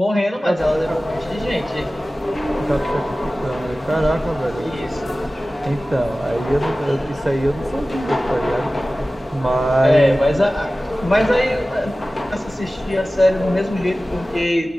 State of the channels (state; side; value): normal; both; correlation 0.96